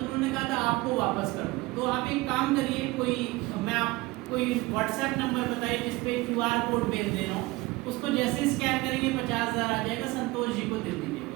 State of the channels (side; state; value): left; quieter; 21.3 dB